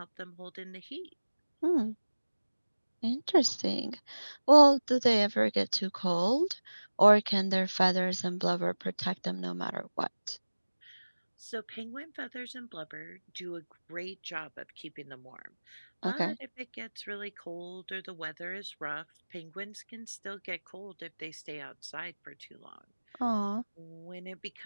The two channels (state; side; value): inverted; both; correlation -1.00